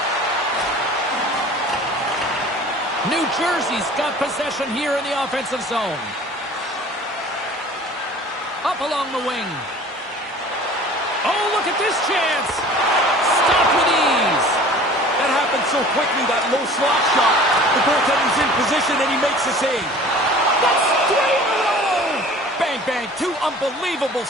New Jersey's got possession here in the offensive zone. Up along the wing. Oh, look at this chance. Stopped with ease. That happened so so quickly, that low slot shot. The goaltender's in position, and he makes the save. That's 3 in a row! Bang, bang, 2 unbelievable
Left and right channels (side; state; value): both; normal; correlation 0.45